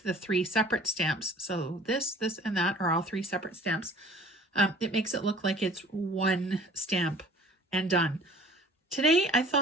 the three separate stamps. So this, and that are all three separate stamps. It makes it look like it's one stamp and done. Today I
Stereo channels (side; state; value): both; normal; correlation 0.50